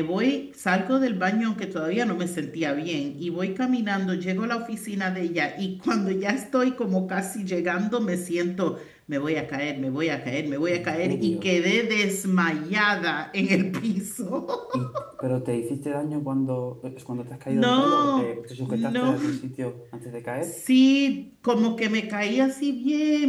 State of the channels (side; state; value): both; identical; correlation 1.00